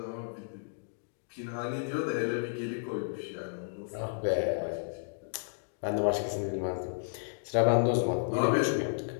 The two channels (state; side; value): silent; right; digital silence